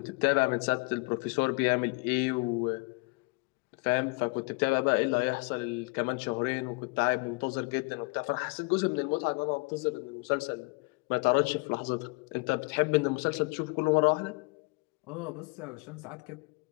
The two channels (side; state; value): right; quieter; 28.5 dB